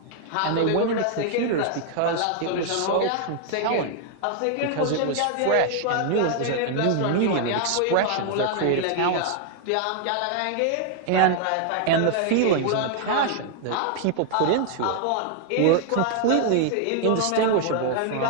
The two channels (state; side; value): different; both; correlation 0.00